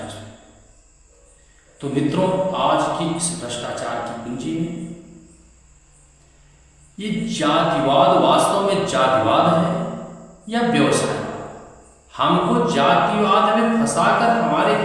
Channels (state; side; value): identical; both; correlation 1.00